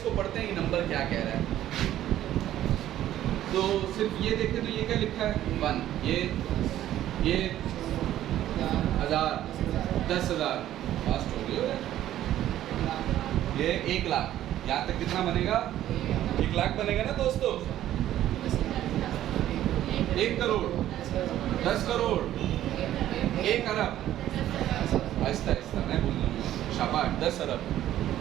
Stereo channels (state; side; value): quieter; left; 12.7 dB